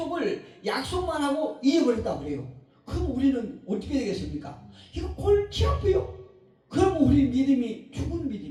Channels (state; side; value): identical; both; correlation 1.00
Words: 하고 잊어버렸다 그래요. 그럼 우리는 어떻게 되겠습니까? 이거 골치 아파요. 그럼 우리 믿음이 죽은